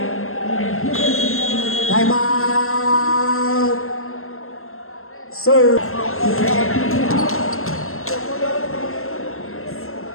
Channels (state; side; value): late; right; 0.62 ms